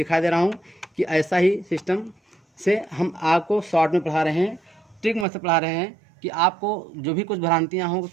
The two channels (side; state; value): left; drops out; at 5.2 s